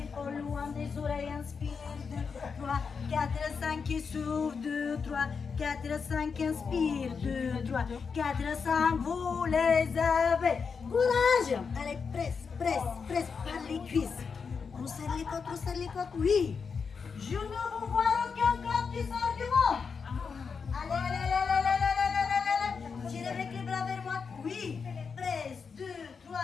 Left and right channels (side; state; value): right; quieter; 5.6 dB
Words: épaules loin des oreilles. Inspire, 2, 3, 4, 5 et souffle. 2, 3, 4, 5, inspire. 2, 3, 4, 5, vous les avez. Courage. Allez, presse par les cuisses. On serre les côtes, oui. Je ne vous vois aucun corps qui sort du monde. Allez. Tirez avec les bras vers moi. Oui. Presse, 2, 3,